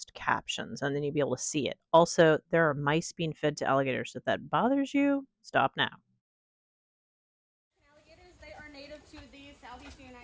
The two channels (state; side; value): identical; both; correlation 1.00